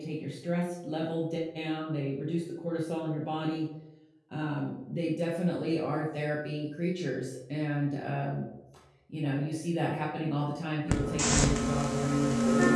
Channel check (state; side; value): identical; both; correlation 1.00